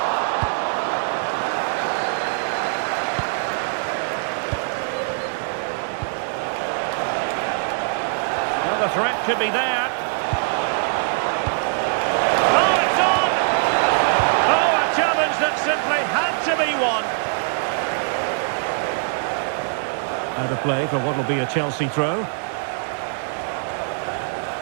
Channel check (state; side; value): silent; left; digital silence